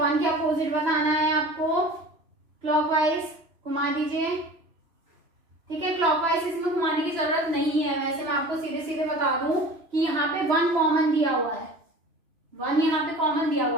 के अपोजिट बताना है आपको, क्लॉकवाइज घुमा दीजिए। ठीक है, क्लॉकवाइज इसमें घुमाने की जरूरत नहीं है, वैसे मैं आपको सीधे सीधे बता दूं कि यहाँ पे 1 कॉमन दिया हुआ है, 1 यहाँ पे कॉमन दिया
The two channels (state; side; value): late; left; 3.0 ms